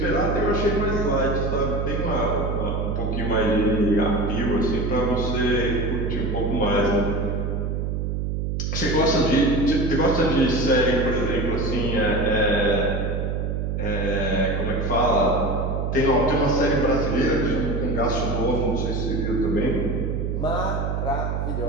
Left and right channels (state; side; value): noise; right; hum, 1 dB below the sound